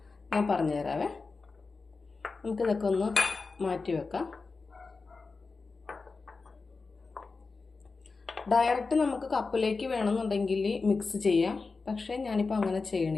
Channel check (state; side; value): quieter; right; 4.2 dB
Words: ഞാൻ പറഞ്ഞുതരാവേ. നമുക്കിതൊക്കെ ഒന്ന് മാറ്റി വെക്കാം. ഡയറക്റ്റ് നമുക്ക് കപ്പിലേക്ക് വേണമെന്നുണ്ടെങ്കിൽ മിക്സ് ചെയ്യാം, പക്ഷേ ഞാനിപ്പോൾ അങ്ങനെ